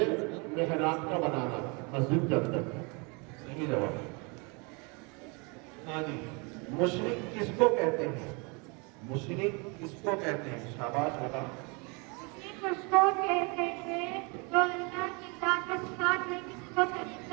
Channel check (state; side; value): quieter; left; 31.0 dB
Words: محراب کا بنانا مسجد کے اندر. صحیح جواب. ہاں جی. مشرک کس کو کہتے ہیں؟ مشرک کس کو کہتے ہیں؟ شاباش. بتا. مشرک اس کو کہتے ہیں جو اللہ کی ذات کے ساتھ میں کسی کو شریک